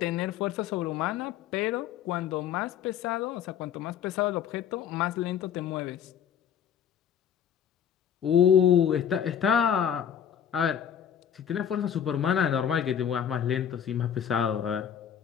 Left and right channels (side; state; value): right; quieter; 8.8 dB